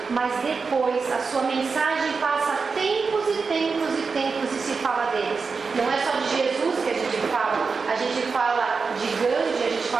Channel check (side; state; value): left; quieter; 4.9 dB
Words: mas depois a sua mensagem passa tempos e tempos e tempos e se fala deles. Não é só de Jesus que a gente fala de Gandhi, a gente